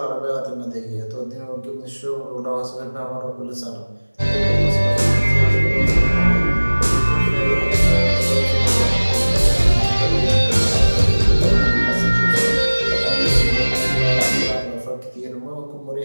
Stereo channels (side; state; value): both; inverted; correlation -1.00